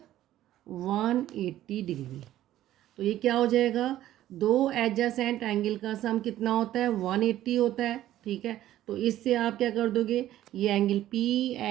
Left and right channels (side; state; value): left; quieter; 13.4 dB